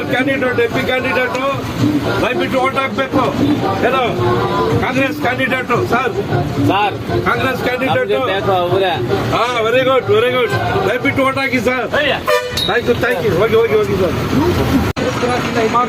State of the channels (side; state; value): both; identical; correlation 1.00